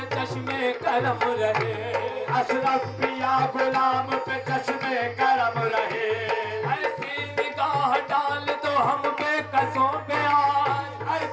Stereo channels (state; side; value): identical; both; correlation 1.00